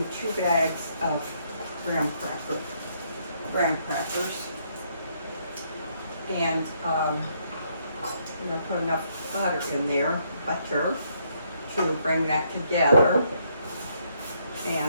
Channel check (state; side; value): inverted; both; correlation -0.72